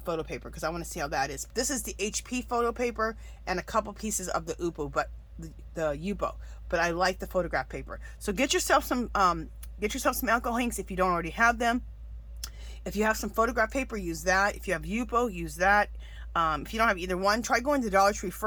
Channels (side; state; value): both; identical; correlation 1.00